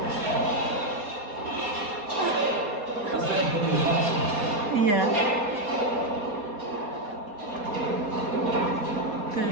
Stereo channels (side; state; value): left; late; 4.2 ms